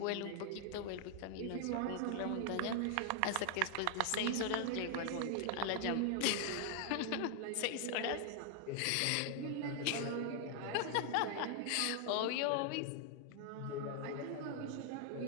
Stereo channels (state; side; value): different; both; correlation 0.00